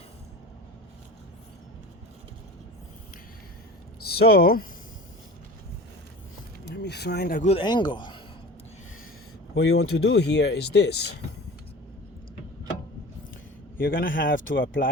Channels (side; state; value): both; normal; correlation 0.36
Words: So let me find a good angle. What you want to do here is this. You're gonna have to